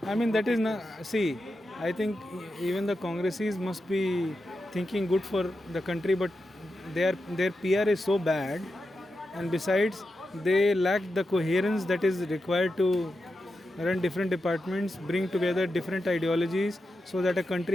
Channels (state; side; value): normal; both; correlation 0.89